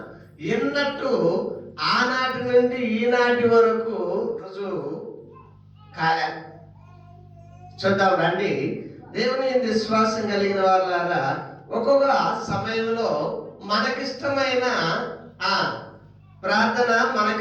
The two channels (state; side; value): identical; both; correlation 1.00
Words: ఎన్నట్టు ఆనాటి నుండి ఈనాటి వరకు రుజువు కాలే. చూద్దాం రండి. దేవుని విశ్వాసం కలిగిన వాళ్ళారా, ఒక్కొక్క సమయంలో మనకిష్టమైన ప్రార్థన,